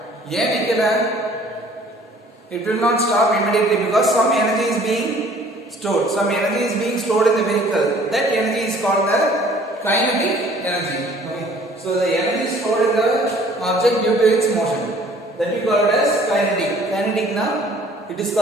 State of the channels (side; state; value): both; normal; correlation 0.55